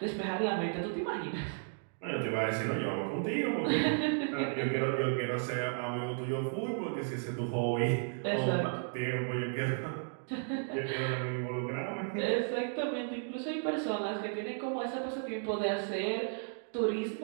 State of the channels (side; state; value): left; silent; digital silence